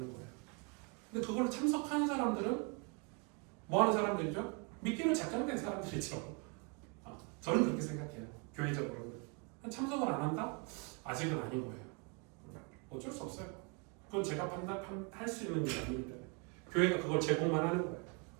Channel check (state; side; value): quieter; left; 34.1 dB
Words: 거예요. 근데 그걸 참석하는 사람들은 뭐 하는 사람들이죠? 믿기로 작정된 사람들이죠. 저는 그렇게 생각해요. 교회적으로는. 참석을 안 한다? 아직은 아닌 거예요. 어쩔 수 없어요. 그건 제가 판단할 수 있는 일이 아니기 때문에 교회가 그걸 제공만 하는 거예요.